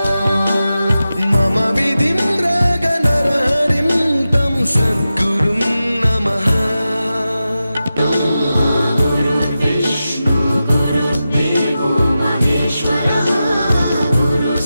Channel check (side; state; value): both; inverted; correlation -0.92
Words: मम विधिं रागनरहरिं तं सद्गुरुं नमः। गुरुर्विष्णु गुरुर्देवो महेश्वरः